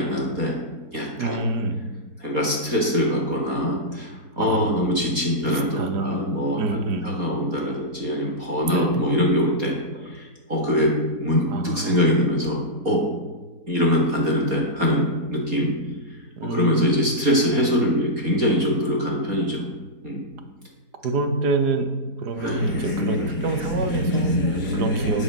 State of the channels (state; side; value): late; left; 4.2 ms